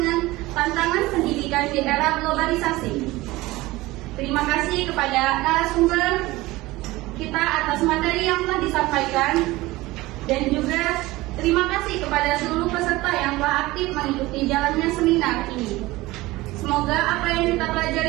tantangan pendidikan di era globalisasi. Terima kasih kepada narasumber kita atas materi yang telah disampaikan, dan juga terima kasih kepada seluruh peserta yang telah aktif mengikuti jalannya seminar ini. Semoga apa yang kita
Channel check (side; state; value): left; quieter; 19.5 dB